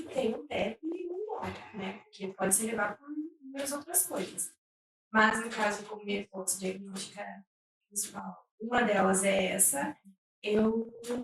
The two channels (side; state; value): both; identical; correlation 1.00